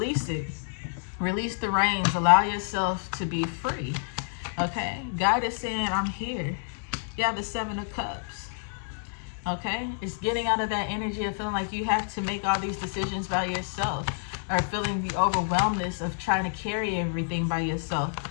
it. Release the reins. Allow yourself to be free. Okay? God is saying, I'm here. You have the Seven of Cups. Okay? It's getting out of that energy of feeling like you have to make all these decisions by yourself, or feeling the overwhelmness of trying to carry everything by yourself.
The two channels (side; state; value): right; silent; digital silence